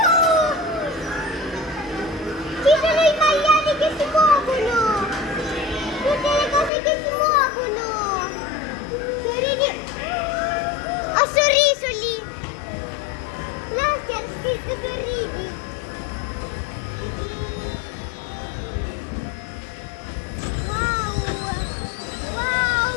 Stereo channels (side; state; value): right; drops out; at 6.7 s